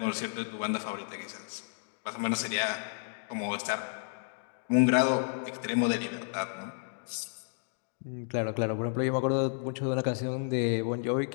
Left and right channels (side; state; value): right; silent; digital silence